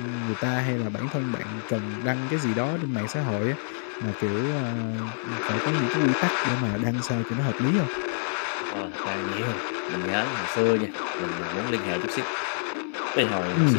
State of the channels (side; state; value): right; silent; digital silence